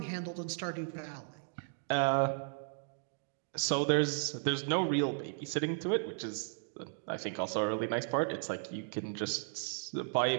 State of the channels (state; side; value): silent; left; digital silence